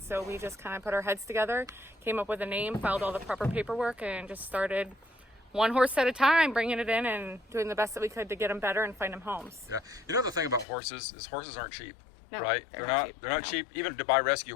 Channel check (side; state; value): right; drops out; at 10.7 s